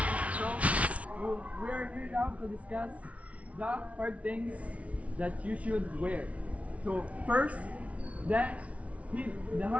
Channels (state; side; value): late; left; 0.065 ms